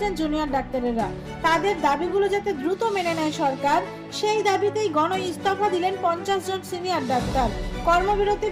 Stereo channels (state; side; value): identical; both; correlation 1.00